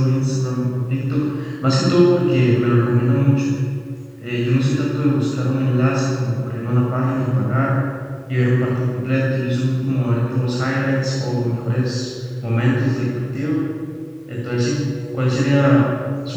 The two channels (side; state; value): both; identical; correlation 1.00